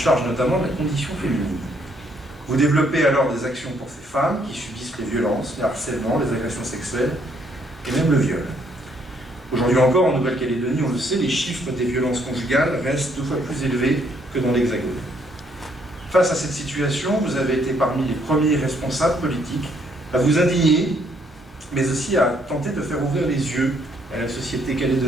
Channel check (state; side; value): normal; both; correlation 0.69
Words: notamment de la condition féminine. Vous développez alors des actions pour ces femmes qui subissent les violences, les harcèlements, les agressions sexuelles et même le viol. Aujourd'hui encore, en Nouvelle-Calédonie, on le sait, les chiffres des violences conjugales restent 2 fois plus élevés que dans l'Hexagone. Face à cette situation, vous avez été parmi les premiers responsables politiques à vous indigner, mais aussi à tenter de faire ouvrir les yeux à la société